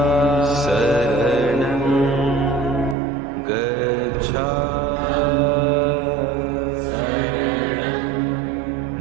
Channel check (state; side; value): drops out; left; at 3.0 s